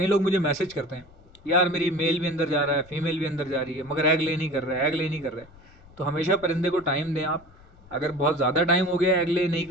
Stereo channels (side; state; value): left; noise; rumble, 25 dB below the sound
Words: लोग मुझे मैसेज करते हैं, यार मेरी मेल भी अंदर जा रहा है, फीमेल भी अंदर जा रही है, मगर एग ले नहीं कर रहा है, एग ले नहीं कर रहा है। तो हमेशा परिंदे को टाइम दें आप। अगर बहुत ज़्यादा टाइम हो गया एग ले नहीं